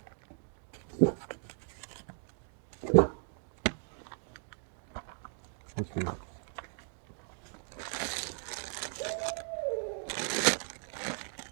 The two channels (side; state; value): left; silent; 54 dB below the other